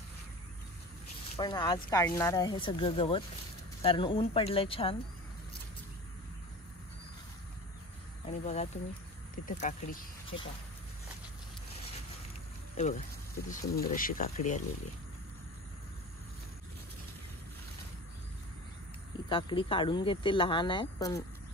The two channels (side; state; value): both; normal; correlation 0.35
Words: पण आज काढणार आहे सगळं गवत कारण ऊन पडलंय छान. आणि बघा तुम्ही तिथे काकडी, हे पहा, हे बघा किती सुंदर अशी काकडी आलेली आहे. ही काकडी काढून घेते, लहान आहे पण